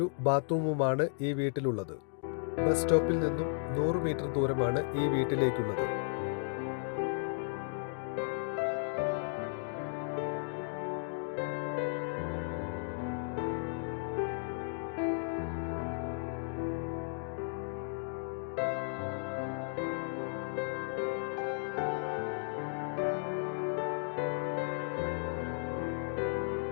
ബാത്റൂമുമാണ് ഈ വീട്ടിലുള്ളത്. ബസ് സ്റ്റോപ്പിൽ നിന്നും 100 മീറ്റർ ദൂരമാണ് ഈ വീട്ടിലേക്കുള്ളത്.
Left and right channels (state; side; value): silent; right; digital silence